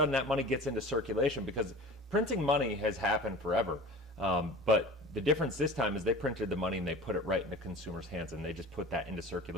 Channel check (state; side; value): normal; both; correlation 0.38